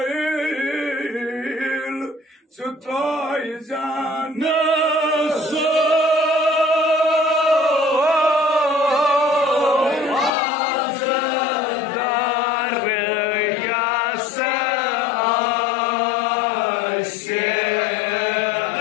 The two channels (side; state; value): right; drops out; at 10.3 s